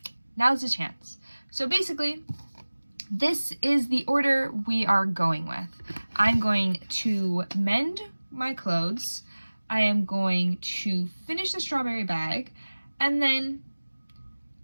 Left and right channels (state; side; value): inverted; both; correlation -1.00